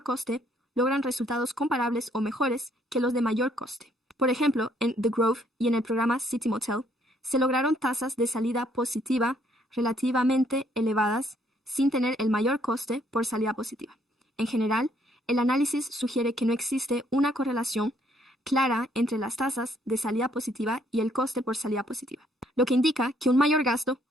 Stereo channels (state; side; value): normal; both; correlation 0.67